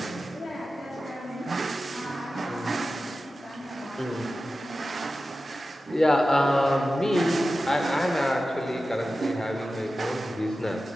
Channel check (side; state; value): both; normal; correlation 0.94